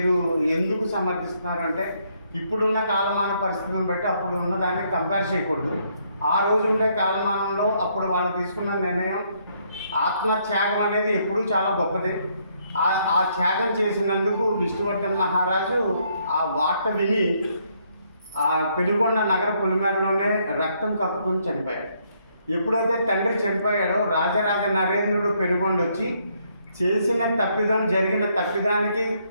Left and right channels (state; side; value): inverted; both; correlation -0.71